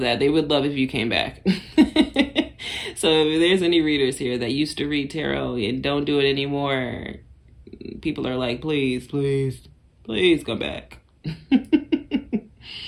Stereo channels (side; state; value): both; identical; correlation 1.00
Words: They would love if you came back. So if there's any readers here that used to read tarot and don't do it anymore, people are like, please come back.